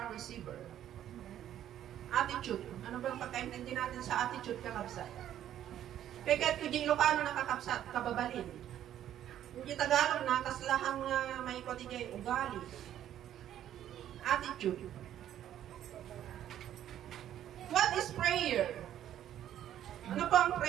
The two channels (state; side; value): quieter; left; 11.3 dB